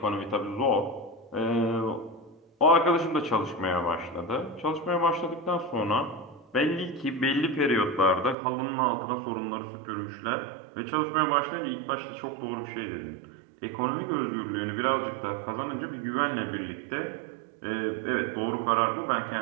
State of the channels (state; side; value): drops out; left; at 8.3 s